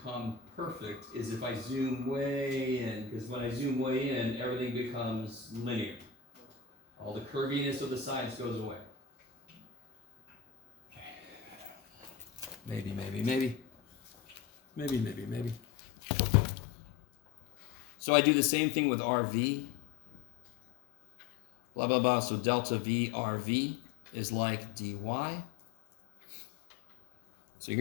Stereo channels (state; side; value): drops out; right; at 15.6 s